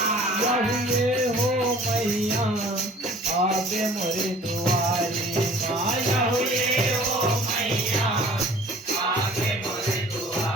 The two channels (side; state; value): both; normal; correlation 0.49